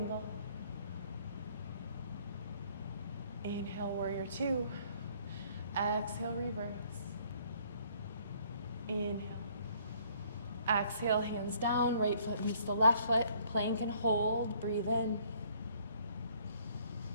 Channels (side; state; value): both; inverted; correlation -0.62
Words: Inhale, warrior two. Exhale, reverse. Inhale. Exhale, hands down, right foot meets the left foot. Plank and hold, breathe in.